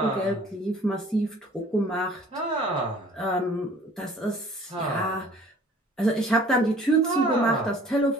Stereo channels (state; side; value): normal; both; correlation 0.51